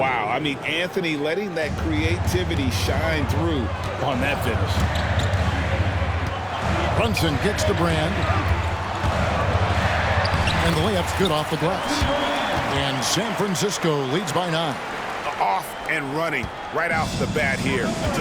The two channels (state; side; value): identical; both; correlation 1.00